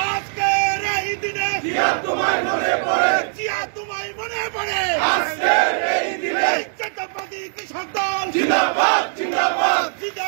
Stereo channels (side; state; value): left; silent; 65 dB below the other